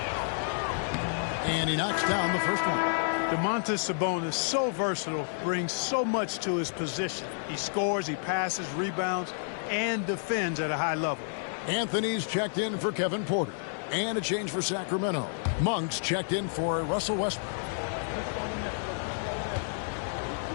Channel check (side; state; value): right; silent; digital silence